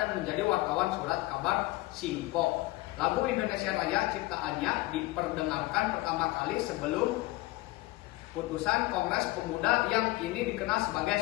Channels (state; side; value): quieter; right; 19.7 dB